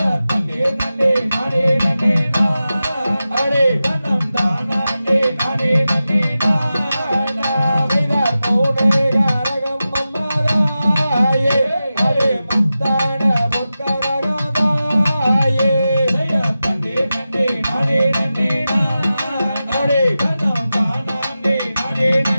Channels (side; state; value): both; inverted; correlation -0.93